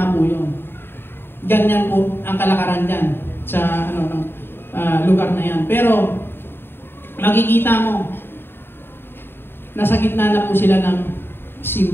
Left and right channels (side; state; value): right; late; 0.11 ms